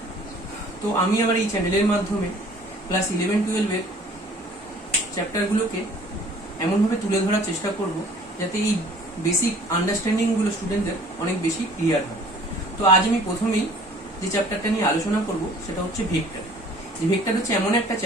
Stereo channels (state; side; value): normal; both; correlation 0.52